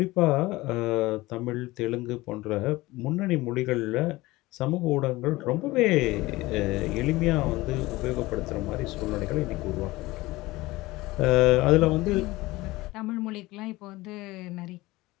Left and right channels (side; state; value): right; quieter; 19.7 dB